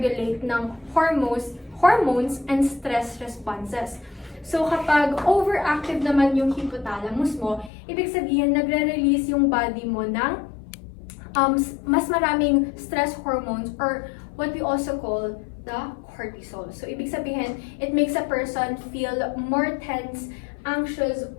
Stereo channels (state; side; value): drops out; right; at 7.7 s